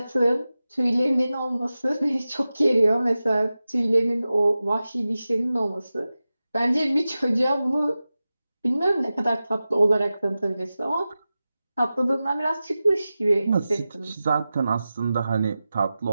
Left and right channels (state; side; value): inverted; both; correlation -0.95